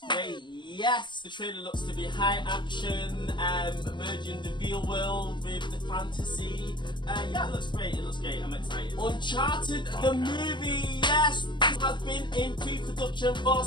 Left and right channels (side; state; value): right; late; 0.22 ms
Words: great. Yes! The trailer looks to be high action, merging the real world with the fantasy. Yeah, it looks great, I'm excited. Uncharted the movie, yes! This has been in pre-production for